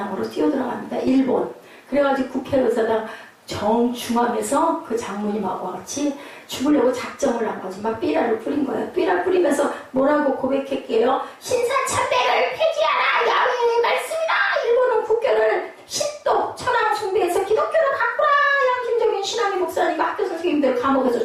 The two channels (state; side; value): identical; both; correlation 1.00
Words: 뛰어 들어갑니다. 일본. 그래가지고 국회의사당 정중앙에서 그 장로님하고 같이 죽으려고 작정을 한 거지. 막 삐라를 뿌린 거예요. 삐라 뿌리면서 뭐라고 고백했게요? 신사참배를 폐지하라! 야훼의 말씀이다! 일본은 국교를 신도 천황 숭배해서 기독교를 바꾸라! 양심적인 신앙의 목사님과 학교 선생님들 감옥에서